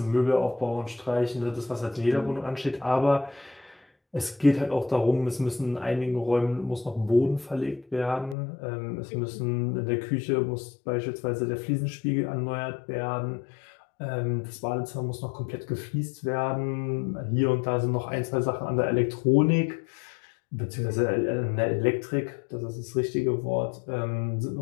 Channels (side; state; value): right; drops out; at 8.3 s